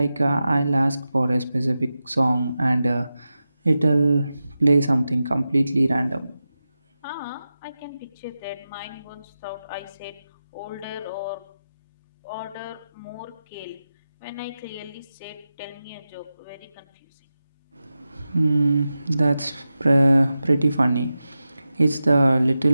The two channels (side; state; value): both; inverted; correlation -0.92